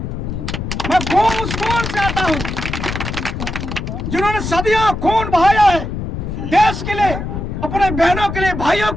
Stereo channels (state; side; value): noise; left; rumble, 5 dB below the sound